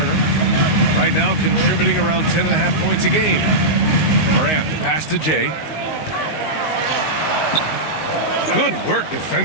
Right now contributing around 10.5 points a game. Morant, the pass to Jay. Good work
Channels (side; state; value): right; late; 19 ms